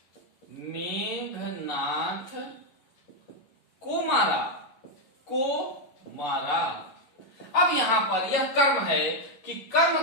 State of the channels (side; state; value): right; late; 11 ms